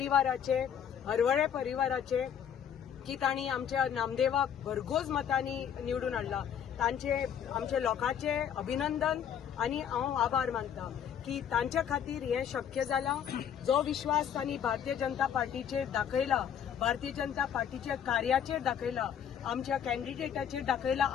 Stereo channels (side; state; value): right; quieter; 8.8 dB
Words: हरवळे परिवाराचे, की तांणी आमच्या नामदेवाक भरघोस मतांनी निवडून हाडला. तांचे आमच्या लोकांचे अभिनंदन आनी हांव आभार मानता की तांच्या खातीर हें शक्य जालां. जो विश्वास तांणी भारतीय जनता पार्टीचेर दाखयला, भारतीय जनता पार्टीच्या कार्याचेर दाखयला, आमच्या कॅन्डिडेटाचेर दाखयला,